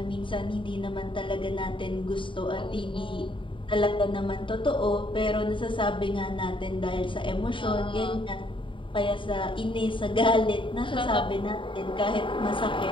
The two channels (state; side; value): late; right; 0.25 ms